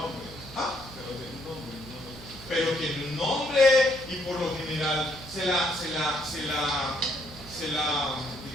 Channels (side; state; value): right; noise; hum, 17 dB below the sound